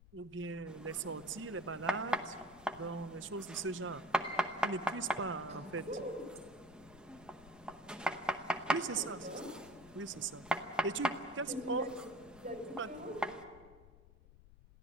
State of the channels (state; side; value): noise; left; rumble, 22 dB below the sound